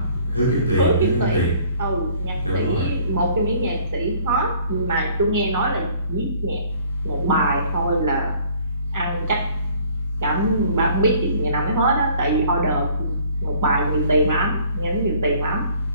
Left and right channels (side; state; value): both; inverted; correlation -0.57